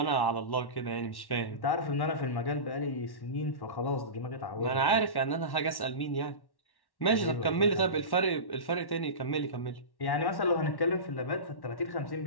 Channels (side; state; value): right; late; 1.1 ms